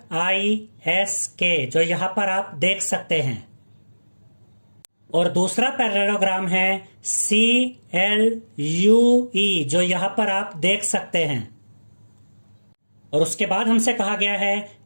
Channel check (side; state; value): both; inverted; correlation -1.00